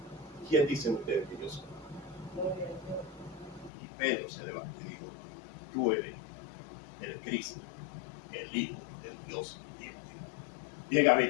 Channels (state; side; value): drops out; right; at 3.7 s